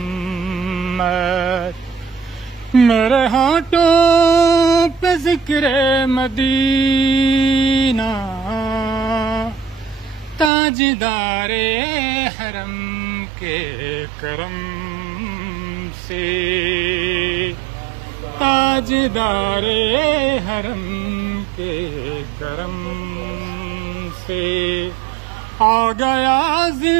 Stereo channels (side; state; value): left; drops out; at 10.5 s